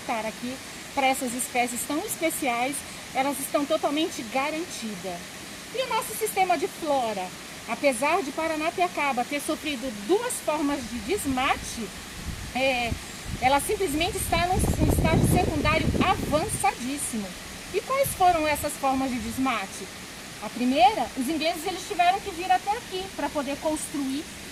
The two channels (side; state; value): both; identical; correlation 1.00